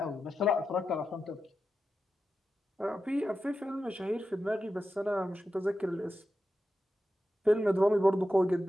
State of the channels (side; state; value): both; normal; correlation 0.90